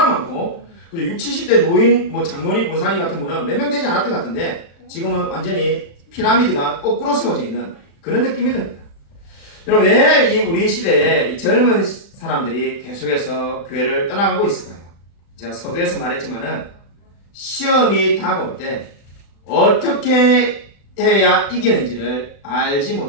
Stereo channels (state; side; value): late; right; 35 ms